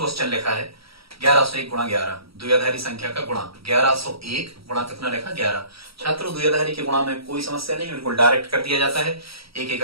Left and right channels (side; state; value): left; late; 0.76 ms